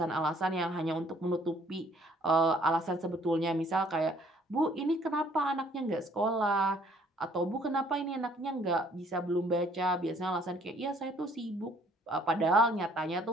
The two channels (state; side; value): normal; both; correlation 0.61